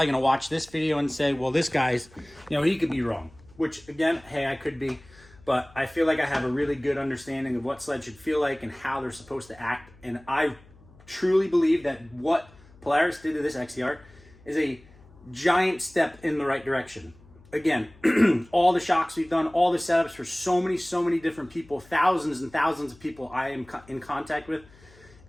going to watch this video and say, well, this guy's, he could be wrong, which again, hey, I could be, but I feel like I have a really good understanding of what sleds should feel like and how they're supposed to act. And I truly believe that what Polaris did to this XCR is a giant step in the right direction. Again, all the shocks we've done, all the setups for so many different people, thousands and thousands of people I am in contact with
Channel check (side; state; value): left; noise; hum, 25 dB below the sound